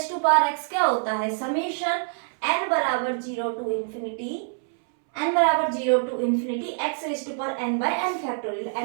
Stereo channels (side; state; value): left; silent; 61 dB below the other